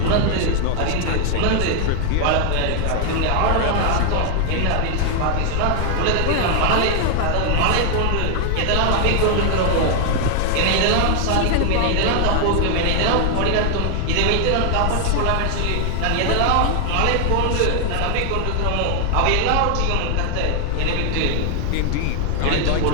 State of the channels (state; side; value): different; both; correlation 0.00